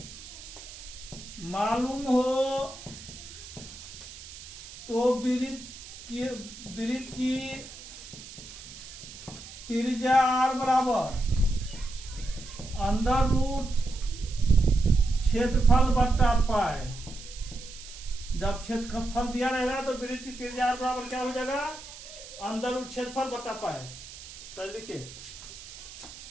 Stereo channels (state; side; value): noise; right; hiss, 15 dB below the sound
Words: मालूम हो तो वृत्त की त्रिज्या आर बराबर अंडर रूट क्षेत्रफल बट्टा पाए। जब क्षेत्रफल दिया रहेगा तो वृत्त की त्रिज्या आर बराबर क्या हो जाएगा? अंदर रूट क्षेत्रफल बटा पाए। तो लिखिए